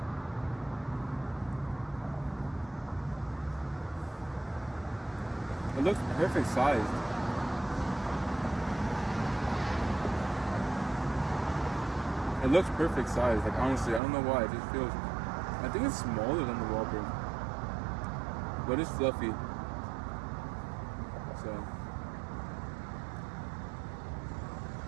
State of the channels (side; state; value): left; drops out; at 14.0 s